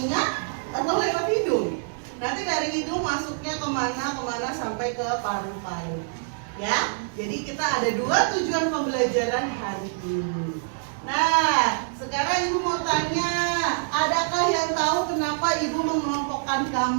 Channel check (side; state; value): left; silent; digital silence